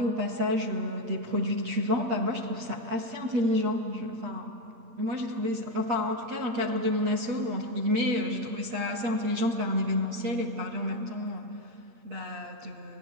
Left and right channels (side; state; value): left; late; 8.6 ms